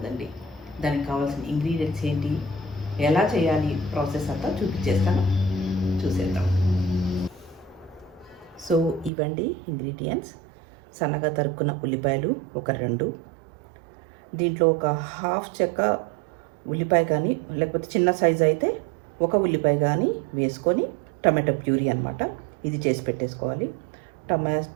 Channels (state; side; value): drops out; left; at 9.1 s